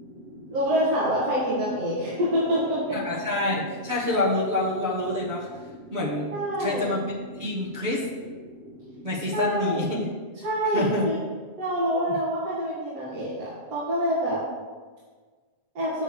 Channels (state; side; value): late; left; 7.4 ms